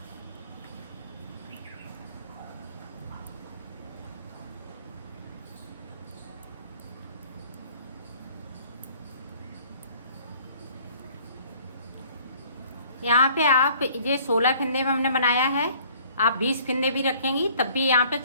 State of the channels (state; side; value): inverted; both; correlation -0.55